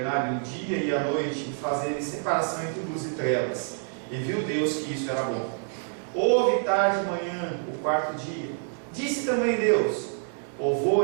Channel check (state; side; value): silent; left; 57 dB below the other